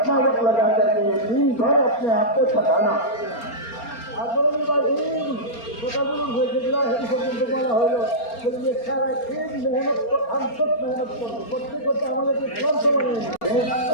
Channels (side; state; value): right; late; 4.3 ms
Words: वक्त लगा करके ये दिन भर अपने आप को थकाना বলা হলো সারা दिन मेहनत हम सब मेहनत করবো, করতে করতে আমাদেরকে ক্লান্ত বানিয়ে